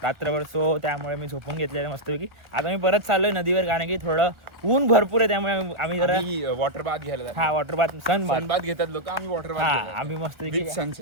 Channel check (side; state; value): left; late; 1.4 ms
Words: रात्रभर. सो त्यामुळे मी झोपून घेतलेलं मस्तपैकी. आता मी परत चाललोय नदीवर, कारण की थोडं ऊन भरपूर आहे, त्यामुळे आम्ही जरा वॉटर बाथ घ्यायला. हा वॉटर बाथ, सन बाथ घेतात लोक. आम्ही वॉटर हा आम्ही मस्तपैकी